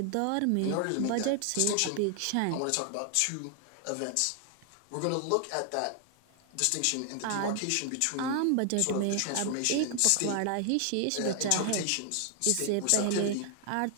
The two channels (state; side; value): different; both; correlation 0.00